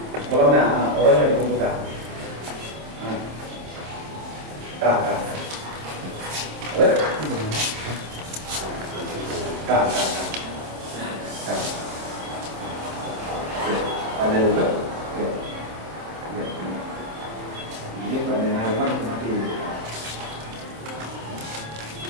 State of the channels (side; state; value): left; late; 26 ms